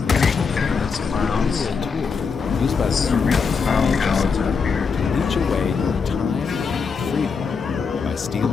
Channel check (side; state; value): right; quieter; 5.5 dB